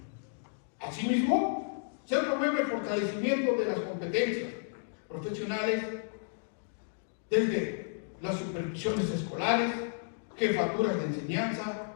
Asimismo, se promueve el fortalecimiento de las competencias profesionales desde las supervisiones escolares, jefaturas de enseñanza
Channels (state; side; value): silent; right; digital silence